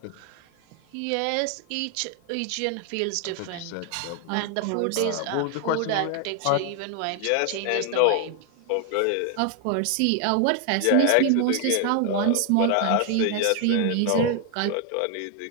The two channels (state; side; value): different; both; correlation 0.00